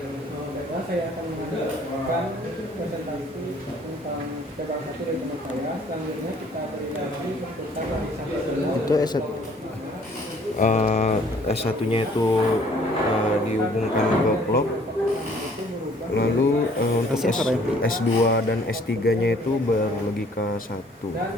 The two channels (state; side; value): normal; both; correlation 0.58